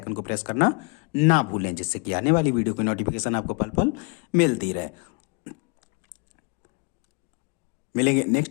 को प्रेस करना ना भूलें, जिससे कि आने वाली वीडियो की नोटिफिकेशन आपको पल पल मिलती रहे। मिलेंगे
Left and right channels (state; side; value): quieter; right; 31.2 dB